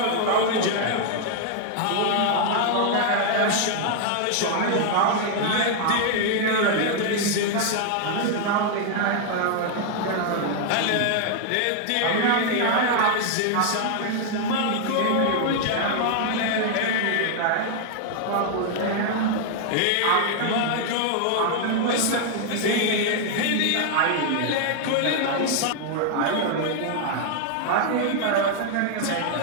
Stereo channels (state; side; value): different; both; correlation 0.00